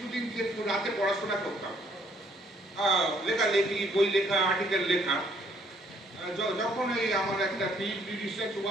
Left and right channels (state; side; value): normal; both; correlation 0.66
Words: যে রাতে পড়াশোনা করতাম, লেখালেখি, বই লেখা, আর্টিকেল লেখা, যখন এই আমার একটা পিএইচডি রিসার্চ